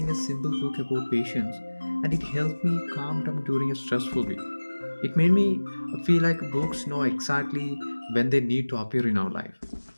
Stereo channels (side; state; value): both; inverted; correlation -1.00